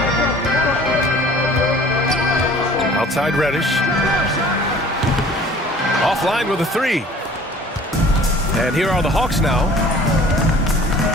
Outside Reddish. Offline with a 3. And here are the Hawks now.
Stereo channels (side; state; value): both; normal; correlation 0.49